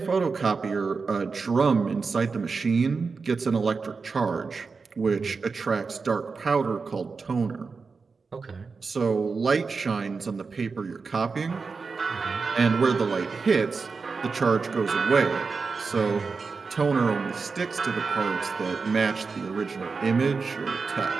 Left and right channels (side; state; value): left; quieter; 4.7 dB